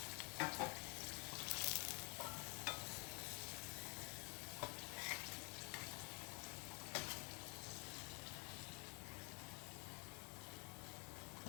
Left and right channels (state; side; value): quieter; right; 33.8 dB